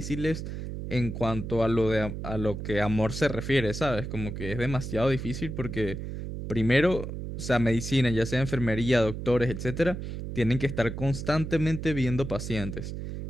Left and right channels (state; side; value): noise; right; hum, 6 dB below the sound